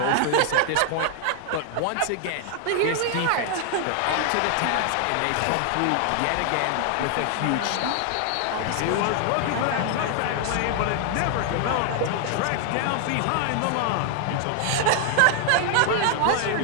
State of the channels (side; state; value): both; different; correlation 0.00